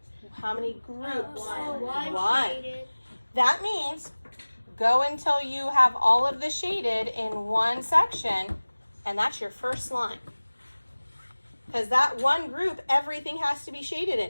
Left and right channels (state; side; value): inverted; both; correlation -1.00